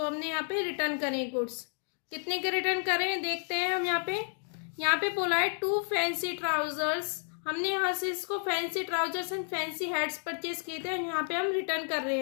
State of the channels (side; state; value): right; silent; 57 dB below the other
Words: हमने यहाँ पे रिटर्न करें गुड्स। कितने के रिटर्न करें देखते हैं हम। यहाँ पे बोला है 2 फैंसी ट्राउजर्स। हमने यहाँ से इसको fancy trousers and fancy hats purchase किए थे और यहाँ पे हम रिटर्न कर रहे